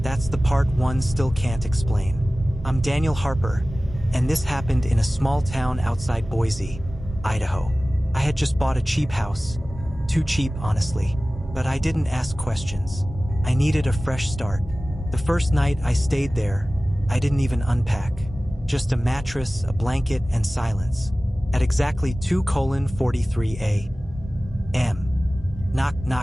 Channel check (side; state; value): both; normal; correlation 0.97